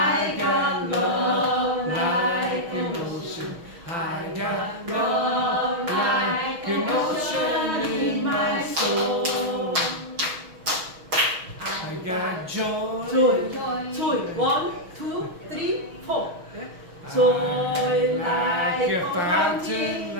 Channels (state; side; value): late; left; 6.3 ms